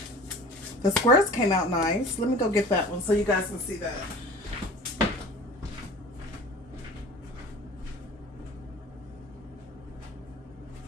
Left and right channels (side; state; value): both; normal; correlation 0.41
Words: The squares came out nice. Let me go get that one so you guys can see that.